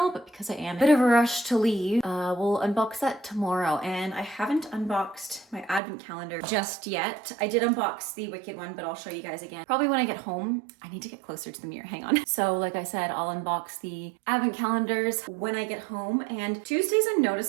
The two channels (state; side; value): drops out; left; at 5.8 s